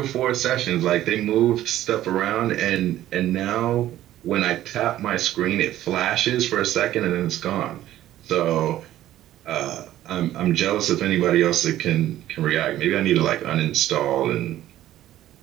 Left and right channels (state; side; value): quieter; left; 13.5 dB